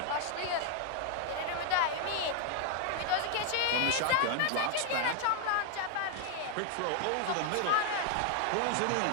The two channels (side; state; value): both; different; correlation 0.00